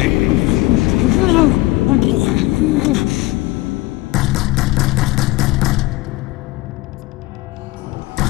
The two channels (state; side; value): quieter; right; 20.1 dB